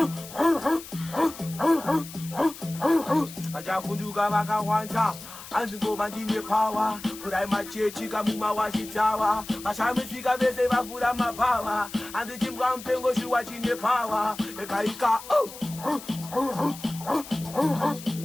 Ajafunduga Maka Wanta. Anzingo bandine power, furai machechi kamuma washitawa. Mashamifika bese bafura mapawa. And the gym pengo shuwachine power. Ekaika,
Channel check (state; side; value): noise; left; hiss, 14 dB below the sound